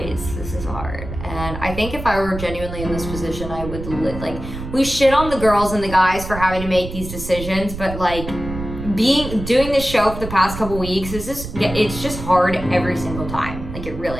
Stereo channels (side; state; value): right; noise; rumble, 9 dB below the sound